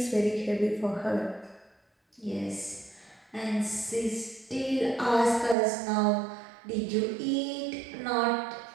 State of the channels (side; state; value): left; drops out; at 5.6 s